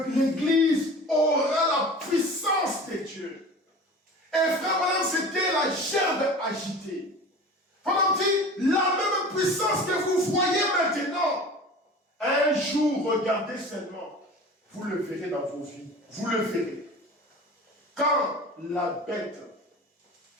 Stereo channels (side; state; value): both; normal; correlation 0.38